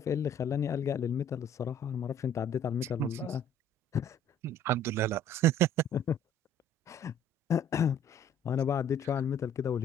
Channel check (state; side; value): normal; both; correlation 0.55